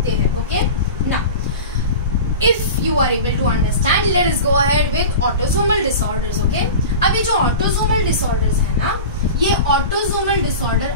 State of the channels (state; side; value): inverted; both; correlation -0.32